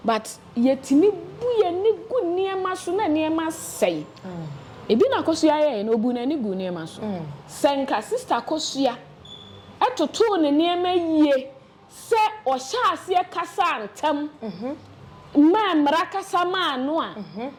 but yetimi buye ni gu niema so na niema sei ebi na Akosua ye no bu na ni gu niema so senka sister Akosua atoto ne niema yie se o sha ase kasa antam ma mra kasa ma no a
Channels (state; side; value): identical; both; correlation 1.00